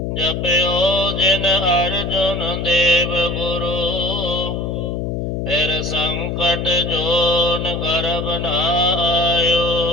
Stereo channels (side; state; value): left; noise; hum, 3 dB below the sound